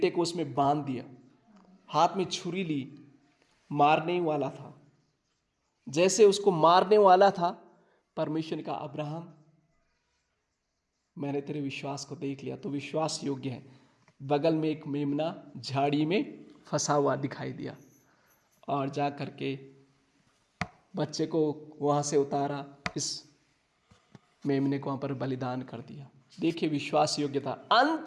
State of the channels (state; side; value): identical; both; correlation 1.00